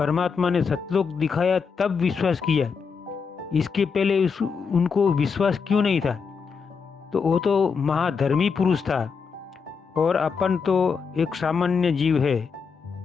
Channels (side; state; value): right; quieter; 5.7 dB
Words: ने सतलोक दिखाया तब विश्वास किया। इसके पहले उनको विश्वास क्यों नहीं था? तो वो तो महाधर्मी पुरुष था और अपन तो एक सामान्य जीव है।